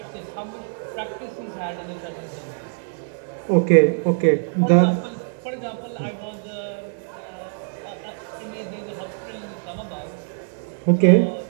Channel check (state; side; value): silent; left; digital silence